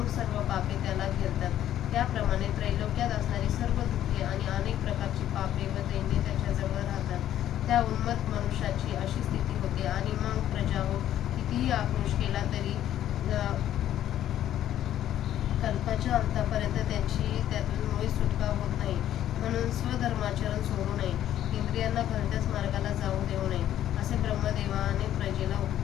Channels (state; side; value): quieter; right; 11.7 dB